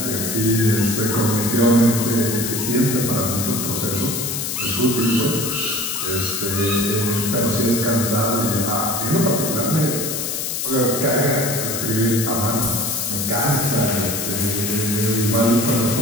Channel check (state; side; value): noise; left; hiss, 3 dB below the sound